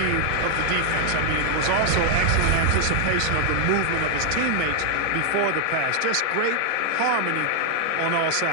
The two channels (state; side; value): different; both; correlation 0.00